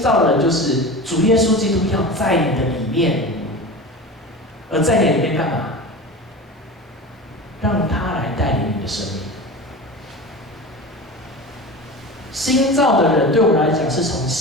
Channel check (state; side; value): normal; both; correlation 0.31